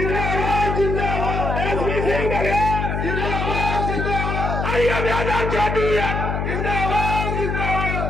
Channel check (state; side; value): noise; left; hum, 1 dB below the sound